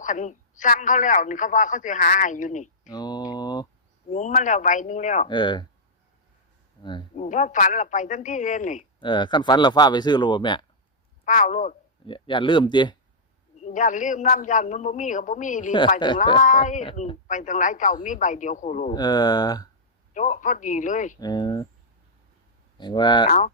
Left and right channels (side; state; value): both; normal; correlation -0.10